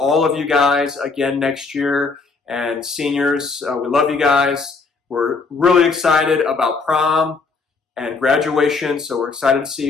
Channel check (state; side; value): quieter; right; 4.3 dB